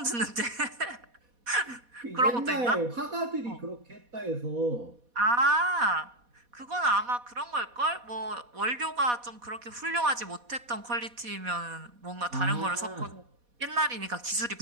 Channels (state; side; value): late; left; 4.1 ms